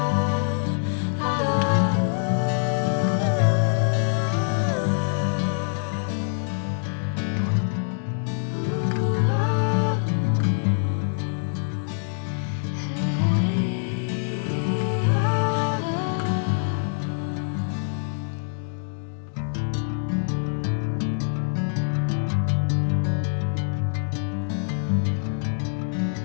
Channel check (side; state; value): right; silent; digital silence